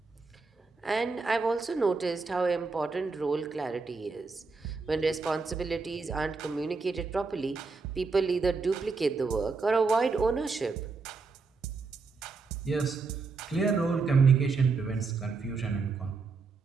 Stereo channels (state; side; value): quieter; left; 4.4 dB